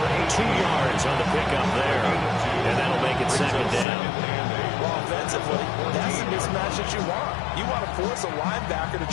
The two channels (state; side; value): drops out; right; at 3.9 s